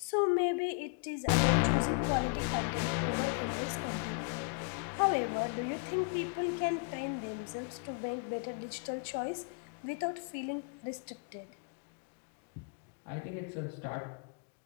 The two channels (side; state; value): right; quieter; 38.9 dB